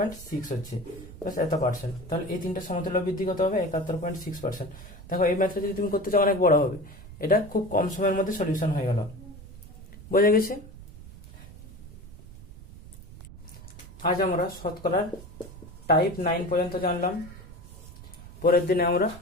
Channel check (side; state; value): right; noise; rumble, 16 dB below the sound